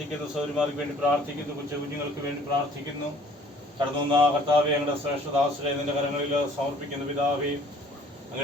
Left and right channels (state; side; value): normal; both; correlation 0.55